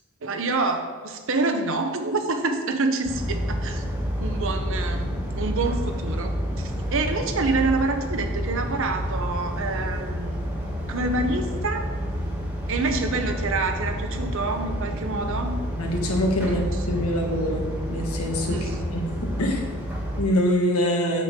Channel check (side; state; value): both; normal; correlation 0.47